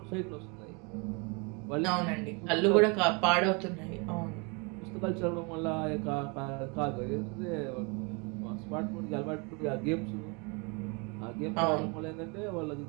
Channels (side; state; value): left; quieter; 31.4 dB